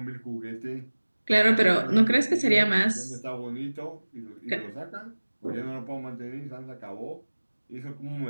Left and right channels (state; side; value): inverted; both; correlation -1.00